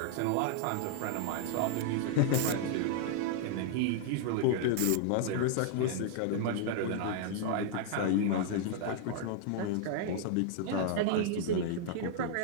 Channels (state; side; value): different; both; correlation -0.01